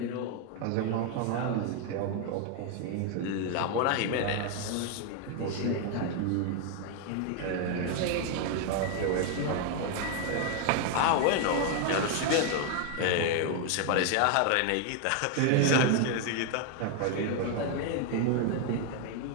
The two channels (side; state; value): both; different; correlation 0.01